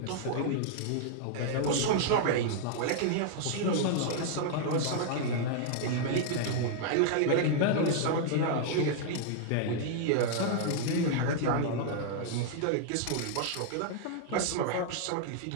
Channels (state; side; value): different; both; correlation -0.01